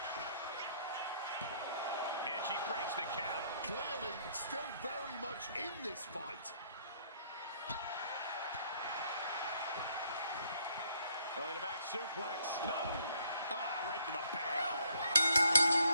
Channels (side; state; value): both; inverted; correlation -0.65